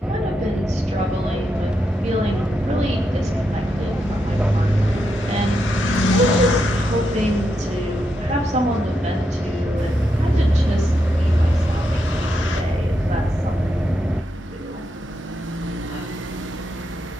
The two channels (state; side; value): normal; both; correlation 0.83